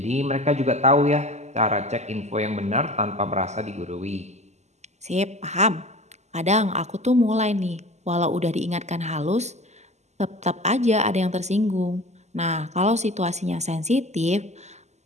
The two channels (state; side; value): late; left; 0.33 ms